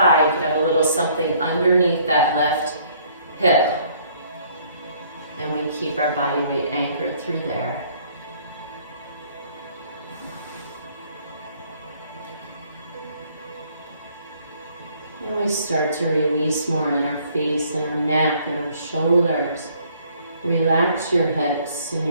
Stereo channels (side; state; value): both; inverted; correlation -0.62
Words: you can have a little something underneath that left hip. And we keep our body weight anchored through there. And we start to release more in our face and our neck and our shoulders. Relax your hips and